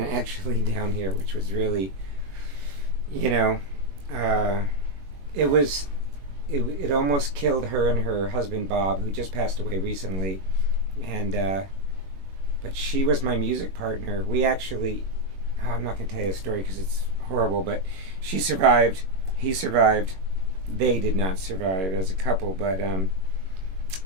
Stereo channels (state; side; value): late; left; 21 ms